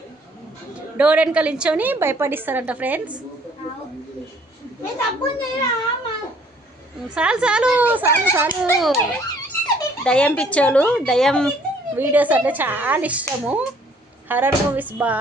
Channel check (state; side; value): normal; both; correlation 0.60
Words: డోర్ వెనకాల నించొని భయపడిస్తారంట ఫ్రెండ్స్. చాలు చాలు చాలు చాలు. దయ్యం పిచ్చోళ్ళు, దయ్యం వీడియోస్ అంటే చాలా ఇష్టము. హర్రర్ మూవీస్